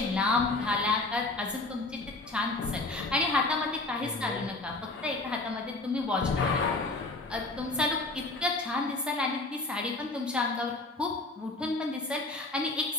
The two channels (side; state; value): right; quieter; 3.1 dB